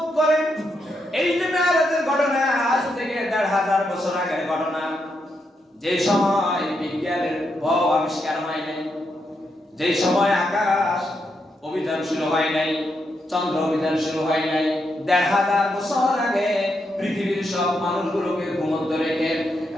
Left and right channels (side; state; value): both; normal; correlation 0.81